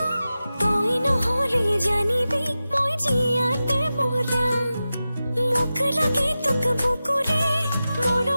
তই নহলে জানিবি মই জিয়াতে মৰা মোক লাগে তোক বুকুৰে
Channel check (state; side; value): inverted; both; correlation -0.94